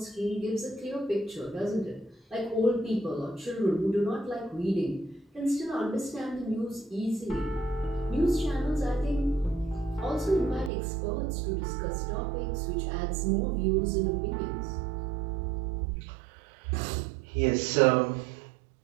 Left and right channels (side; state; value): left; drops out; at 10.7 s